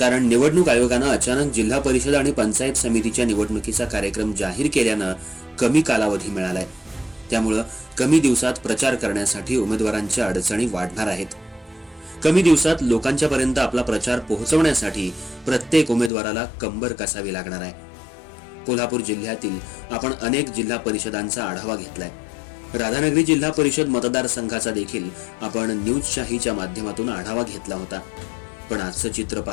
निवडणूक आयोगानं अचानक जिल्हा परिषद आणि पंचायत समितीच्या निवडणुकीचा कार्यक्रम जाहीर केल्यानं कमी कालावधी मिळालाय. त्यामुळं कमी दिवसात प्रचार करण्यासाठी उमेदवारांच्या अडचणी वाढणार आहेत. कमी दिवसात लोकांच्या पर्यंत आपला प्रचार पोहोचवण्यासाठी प्रत्येक उमेदवाराला कंबर कसावी लागणार आहे. कोल्हापूर जिल्ह्यातील आपण अनेक जिल्हा परिषदांचा आढावा घेतलाय. राधानगरी जिल्हा परिषद मतदारसंघाचा देखील आपण न्यूजशाहीच्या माध्यमातून आढावा घेतला होता. पण आजचं चित्र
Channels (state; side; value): drops out; right; at 16.1 s